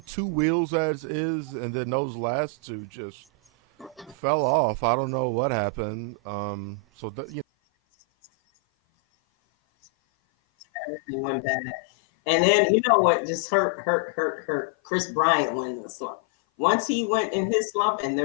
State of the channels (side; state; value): right; drops out; at 7.5 s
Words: two wheels as is, and then those last two just fell off. I don't know what happened. Just those things didn't, just all added to it. Everything went bad. And Yeah, then you know what just hurt. Chris Bryant went in the slump. Once he went yeah, in his slump, and